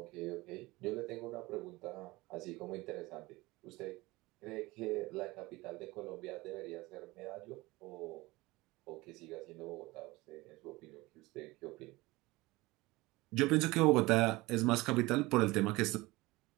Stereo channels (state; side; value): quieter; left; 21.1 dB